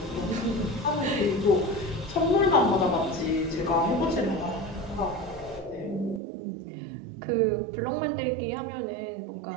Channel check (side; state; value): left; drops out; at 6.2 s